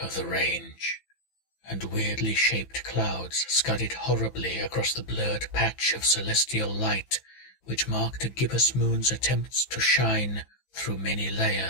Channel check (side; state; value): right; late; 15 ms